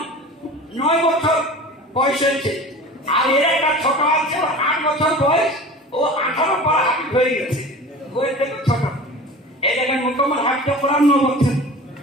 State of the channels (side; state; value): both; normal; correlation 0.37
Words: 9 বছর বয়স হয়েছে। আর এর একটা ছোট আছে 8 বছর বয়স, ও 18 পর হাফিজ হয়ে গেছে। বয়স থেকে ছোট। এই দেখেন মুকাম্মল হাফিজ কোরআন 9 বছর।